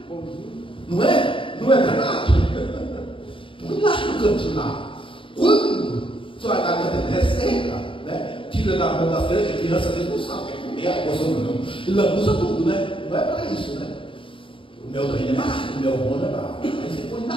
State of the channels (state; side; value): late; right; 0.25 ms